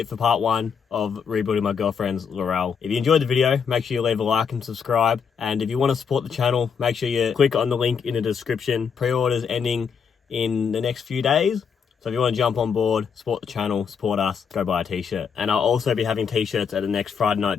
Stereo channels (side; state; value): right; quieter; 6.5 dB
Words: for part 1 of rebuilding my girlfriend's Laurel. If you enjoyed the video, make sure you leave a like and subscribe. And if you want to support the channel, make sure you click on the link in the description. Pre-orders ending in the next few days. So if you want to jump on board, support the channel, support us, go buy a t-shirt. And I'll also be having t-shirts at the next Friday night